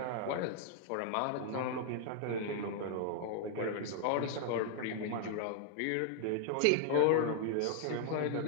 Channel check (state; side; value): different; both; correlation -0.01